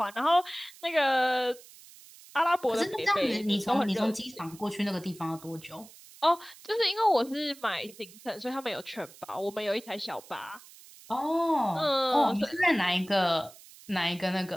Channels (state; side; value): noise; right; hiss, 21 dB below the sound